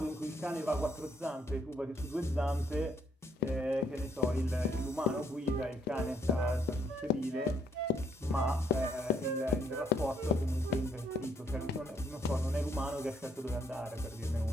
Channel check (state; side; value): normal; both; correlation 0.69